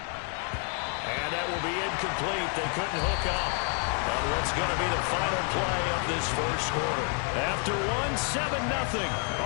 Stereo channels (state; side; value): quieter; right; 39.3 dB